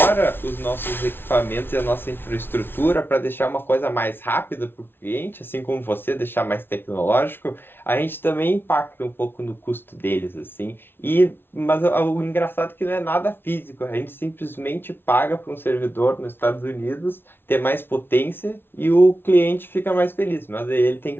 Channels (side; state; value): right; late; 0.11 ms